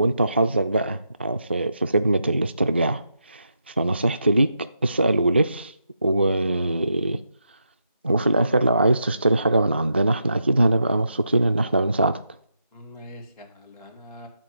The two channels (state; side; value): inverted; both; correlation -0.82